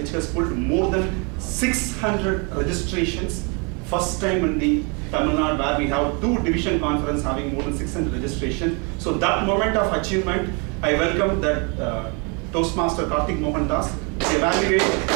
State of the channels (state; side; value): quieter; left; 33.3 dB